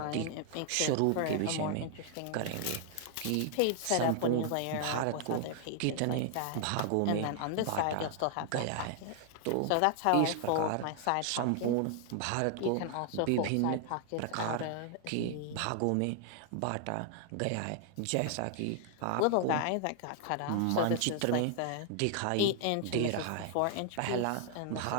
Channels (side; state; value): both; different; correlation 0.00